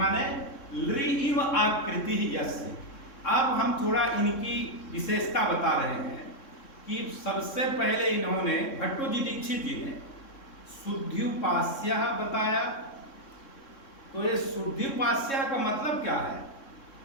लृ इव आकृति यस्य। अब हम थोड़ा इनकी विशेषता बता रहे हैं कि सबसे पहले इन्होंने भट्टोजी दीक्षित जी ने शुद्ध्युपास्य बताया। तो ये शुद्ध्युपास्य का मतलब क्या है?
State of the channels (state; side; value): late; right; 3.6 ms